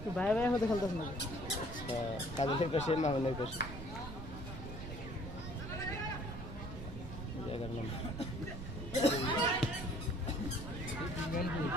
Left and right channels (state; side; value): noise; right; rumble, 10 dB below the sound